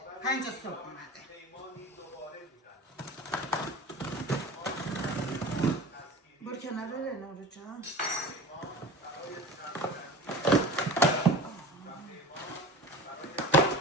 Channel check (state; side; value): normal; both; correlation 0.36